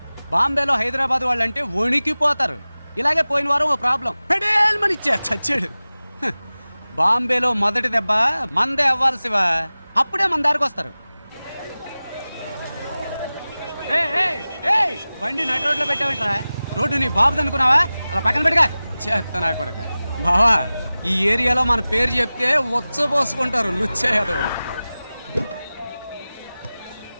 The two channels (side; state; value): both; inverted; correlation -0.97